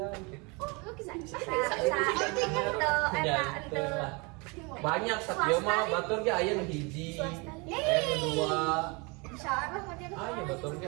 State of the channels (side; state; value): left; quieter; 29.3 dB